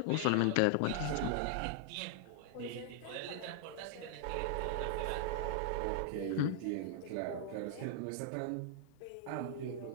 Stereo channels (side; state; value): both; different; correlation -0.01